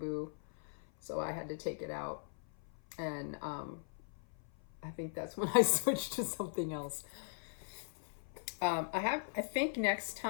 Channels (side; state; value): right; silent; 52 dB below the other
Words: So I had to take it out. And I think that's when I switched to something else. I think next